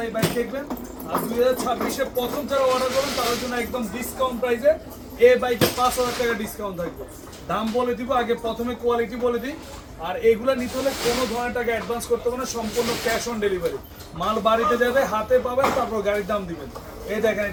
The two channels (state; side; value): identical; both; correlation 1.00